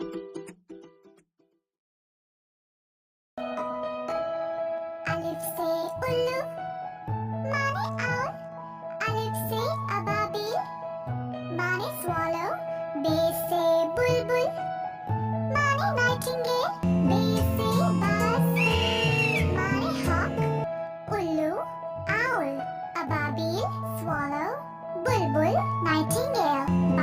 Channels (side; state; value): both; identical; correlation 1.00